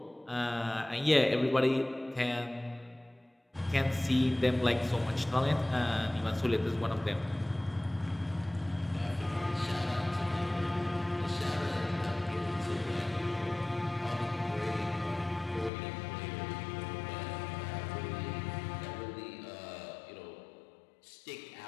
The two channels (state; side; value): drops out; right; at 15.7 s